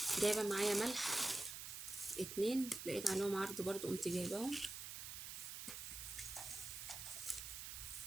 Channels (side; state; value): right; noise; hiss, 7 dB below the sound